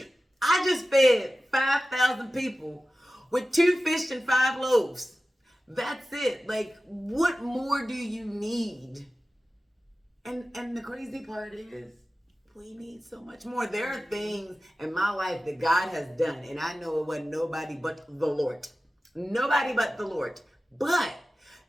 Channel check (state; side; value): normal; both; correlation 0.95